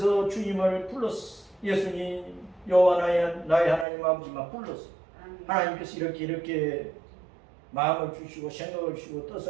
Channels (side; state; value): left; drops out; at 3.9 s